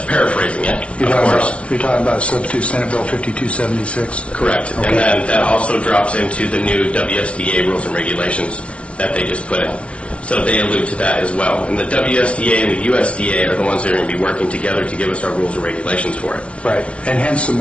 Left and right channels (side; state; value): right; late; 0.059 ms